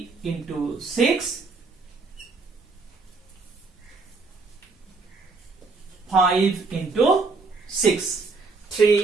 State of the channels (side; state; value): left; quieter; 4.1 dB